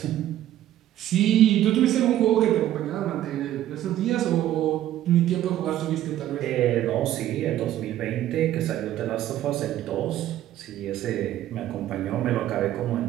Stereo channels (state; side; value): quieter; left; 12.8 dB